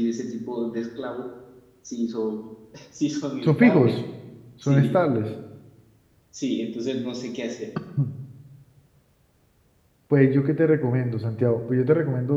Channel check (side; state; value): both; identical; correlation 1.00